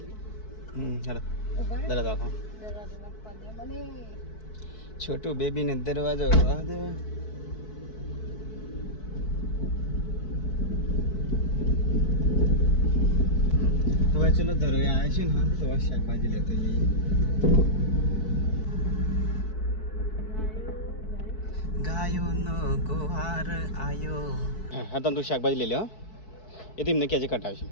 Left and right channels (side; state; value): right; late; 4.6 ms